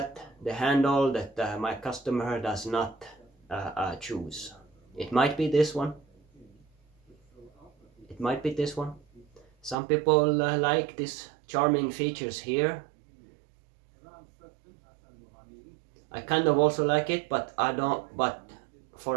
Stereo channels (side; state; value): left; drops out; at 9.8 s